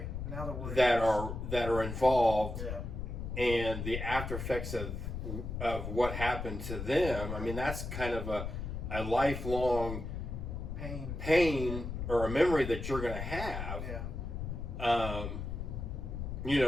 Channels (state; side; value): noise; left; rumble, 5 dB below the sound